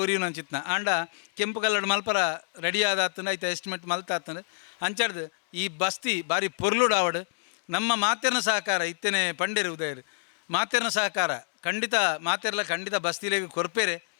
ಉರಿಯು ನಂಚಿತ್ನ ಆಂಡ ಕೆಂಪು ಕಲ್ಲಡ್ ಮಲ್ಪರ ರೆಡಿ ಆದಾತಂದು ಐತೆ ಎಸ್ಟಿಮೇಟ್ ಮಲ್ತಾತಂದು ಅಂಚಡ್ದು ಈ ಬಸ್ತಿ ಬಾರಿ ಪೊರ್ಲುಡು ಆವಡು ನಮ್ಮ ಮಾತೆರ್ನ ಸಹಕಾರ ಇತ್ತೇನೆ ಪಂಡೇರು ಉದಯರು ಮಾತೆರ್ನ ಸಹಕಾರ ಖಂಡಿತ ಮಾತೆರ್ಲ ಖಂಡಿತ ಬಸ್ತಿಲೇಗೆ ಕೊರ್ಪೇರೆ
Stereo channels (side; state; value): right; silent; digital silence